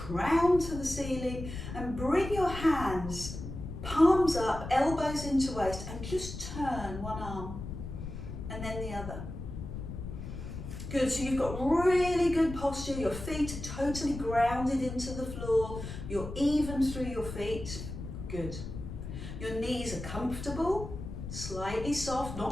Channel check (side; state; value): left; noise; rumble, 8 dB below the sound